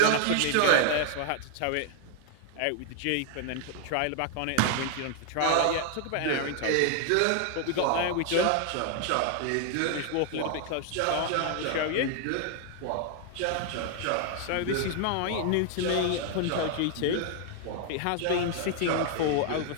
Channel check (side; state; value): both; different; correlation 0.00